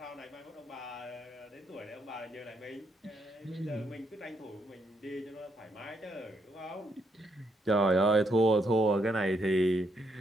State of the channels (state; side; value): normal; both; correlation 0.76